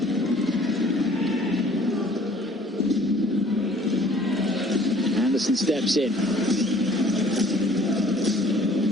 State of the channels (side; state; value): both; normal; correlation 0.55